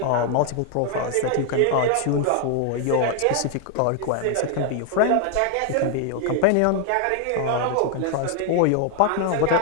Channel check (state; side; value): different; both; correlation 0.00